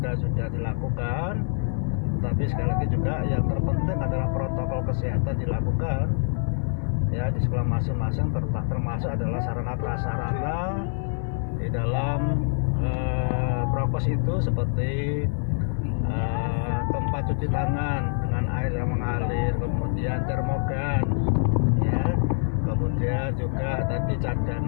sudah dilakukan. Tapi sekali lagi juga yang terpenting adalah protokol kesehatan dilakukan ya di sekolah masing-masing, termasuk adalah sarana prasarana di dalam prokes itu seperti tempat cuci tangan dengan air yang mengalir, kemudian termogan ya, kemudian juga tadi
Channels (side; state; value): right; silent; 57 dB below the other